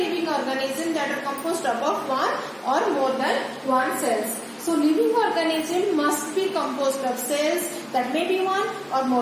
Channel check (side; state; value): both; identical; correlation 1.00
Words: organisms that are composed of 1 or more than 1 cells. So living organism must be composed of cells that may be 1 or